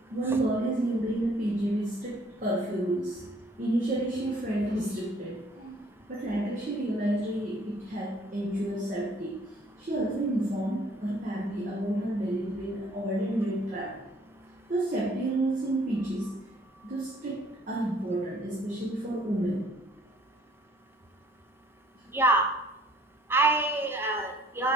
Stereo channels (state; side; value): normal; both; correlation 0.60